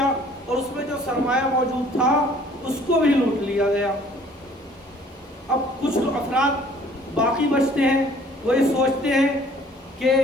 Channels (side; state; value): both; normal; correlation 0.55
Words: اور اس میں جو سرمایہ موجود تھا اس کو بھی لوٹ لیا گیا۔ اب کچھ افراد باقی بچتے ہیں، وہ یہ سوچتے ہیں کہ